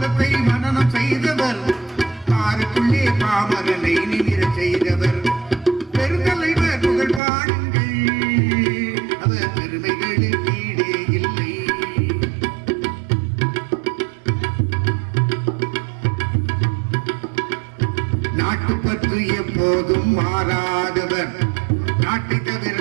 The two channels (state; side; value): drops out; left; at 7.2 s